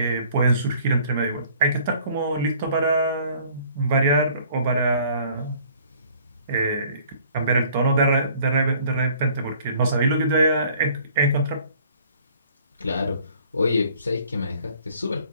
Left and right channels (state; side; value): inverted; both; correlation -0.56